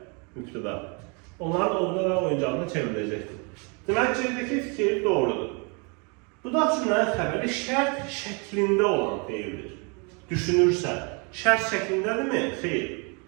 mübtəda, onların ovuna və oyuncağına çevriləcəkdir. Demək, C'dəki fikir doğrudur. Budaq cümlənin xəbəri şərt şəklində olan deyildir. Düşünürsə, şərt şəklindədirmi? Xeyr.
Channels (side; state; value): left; quieter; 33.6 dB